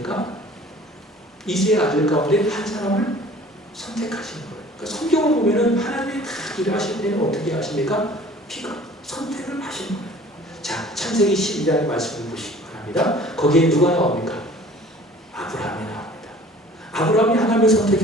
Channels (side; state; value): both; normal; correlation 0.49